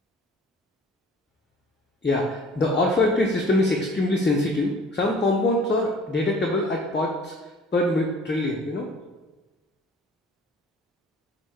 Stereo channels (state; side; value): normal; both; correlation 0.50